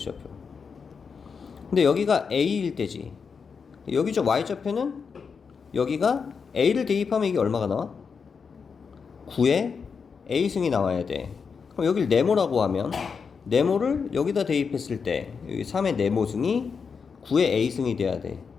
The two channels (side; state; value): right; quieter; 5.7 dB